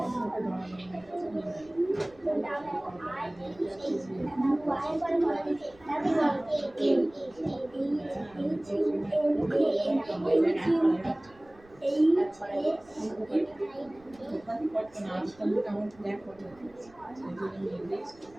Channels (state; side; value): noise; right; rumble, 27 dB below the sound